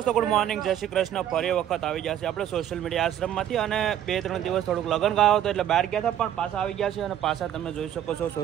good morning, જય શ્રી કૃષ્ણ. ફરી વખત આવી ગયા છે આપણે સોશિયલ મીડિયા આશ્રમમાંથી. અને 2-3 દિવસ થોડુંક લગ્ન ગાયો હતો એટલે બહાર ગયા હતા, પણ પાછા આવી ગયા છે. અને પાછા તમે જોઈ શકો છો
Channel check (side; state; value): left; quieter; 10.9 dB